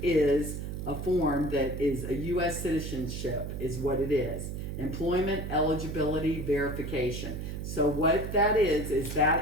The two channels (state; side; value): noise; right; hum, 6 dB below the sound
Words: is a form that is a U.S. citizenship, is what it is. Employment eligibility verification. So what that is